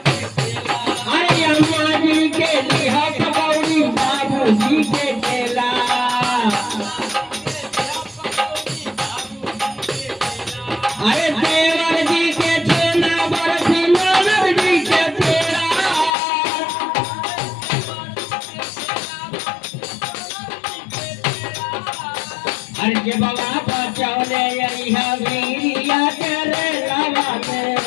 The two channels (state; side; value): drops out; right; at 16.1 s